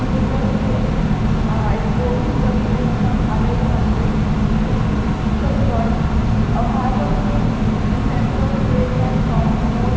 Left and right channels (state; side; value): identical; both; correlation 1.00